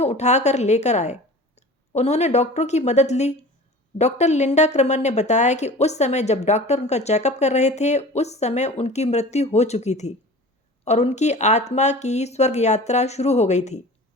उठाकर लेकर आए। उन्होंने डॉक्टरों की मदद ली। डॉक्टर लिंडा क्रमर ने बताया कि उस समय जब डॉक्टर उनका चेकअप कर रहे थे उस समय उनकी मृत्यु हो चुकी थी और उनकी आत्मा की स्वर्ग यात्रा शुरू हो गई थी।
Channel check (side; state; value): both; normal; correlation 0.39